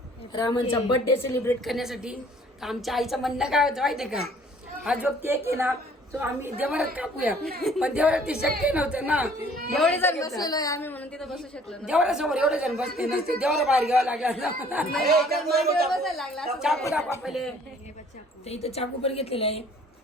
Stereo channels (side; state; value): both; normal; correlation 0.56